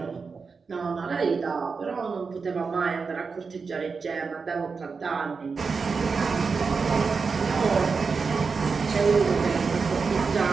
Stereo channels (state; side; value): quieter; left; 5.0 dB